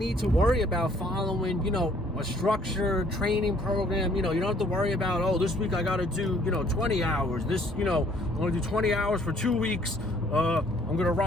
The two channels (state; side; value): normal; both; correlation 0.61